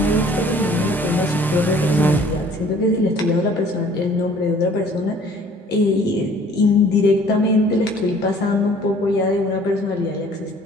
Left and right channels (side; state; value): both; normal; correlation 0.54